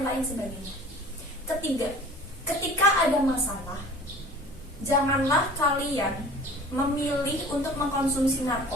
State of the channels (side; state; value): both; normal; correlation 0.44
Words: lain sebagainya. Ketiga, ketika ada masalah, janganlah kalian memilih untuk mengkonsumsi